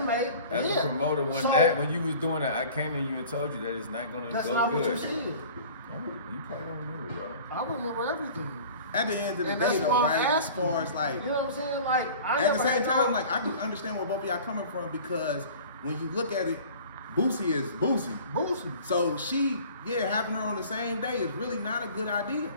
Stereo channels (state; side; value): inverted; both; correlation -0.44